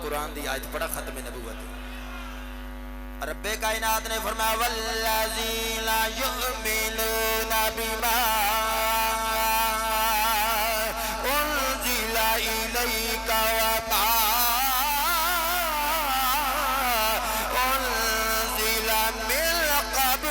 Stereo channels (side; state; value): both; identical; correlation 1.00